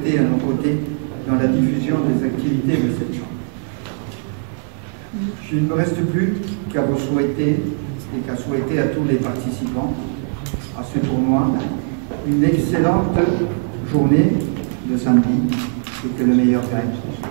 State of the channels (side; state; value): left; silent; 66 dB below the other